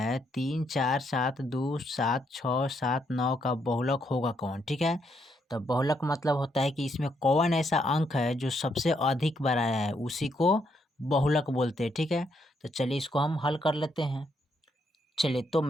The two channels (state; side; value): normal; both; correlation 0.75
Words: 3 4 7 2 7 6 7 9 का बहुलक होगा कौन। ठीक है, तो बहुलक मतलब होता है कि इसमें कौन ऐसा अंक है जो सबसे अधिक बार आया है, उसी को बहुलक बोलते हैं। ठीक है, तो चलिए इसको हम हल कर लेते हैं। चलिए, तो